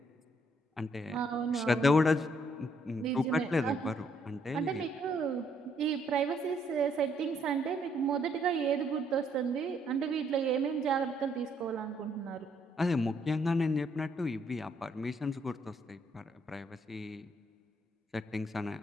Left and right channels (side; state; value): both; normal; correlation 0.70